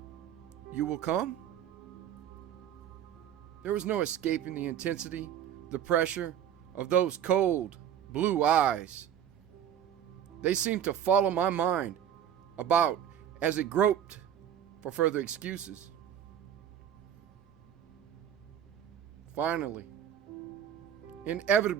You will come? There was no escaping the intensity, the pressure of those cold, blue eyes. They seemed to follow my mind about as it groped for further excuses. Finally,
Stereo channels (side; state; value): left; quieter; 9.6 dB